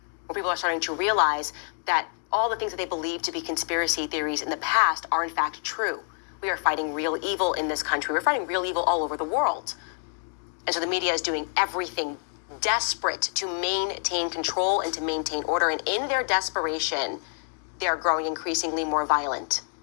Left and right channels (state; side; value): silent; right; 57 dB below the other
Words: More people are starting to realize that all the things that they believed to be conspiracy theories in the past are in fact true. We are fighting real evil in this country. We're fighting real evil all over the world. And so the media is doing everything desperate to maintain control and to maintain order. And in their desperation, they are growing increasingly more violent,